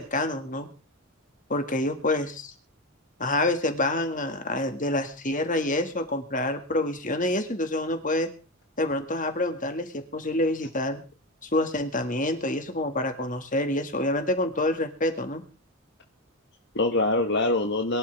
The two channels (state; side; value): normal; both; correlation 0.13